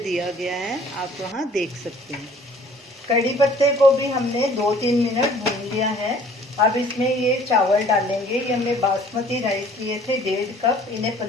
गया है, आप वहाँ देख सकते हैं। कड़ी पत्ते को भी हमने 2-3 मिनट भून लिया है। अब इसमें ये चावल डालेंगे। ये हमने बासमती राइस लिए थे 1.5 कप, इन्हें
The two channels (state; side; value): normal; both; correlation 0.54